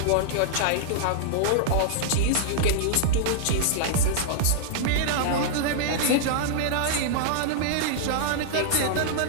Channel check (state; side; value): different; both; correlation -0.01